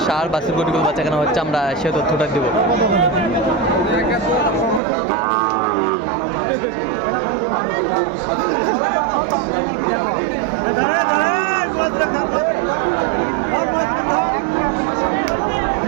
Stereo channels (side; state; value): left; drops out; at 4.8 s